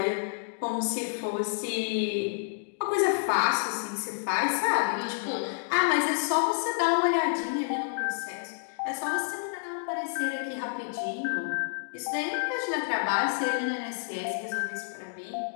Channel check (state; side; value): silent; right; digital silence